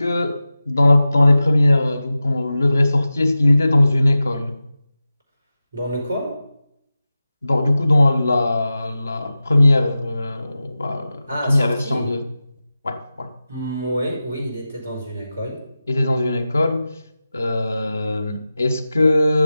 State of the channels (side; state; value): both; inverted; correlation -0.94